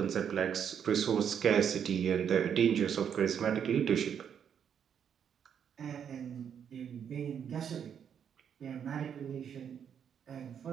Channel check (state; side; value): quieter; left; 8.1 dB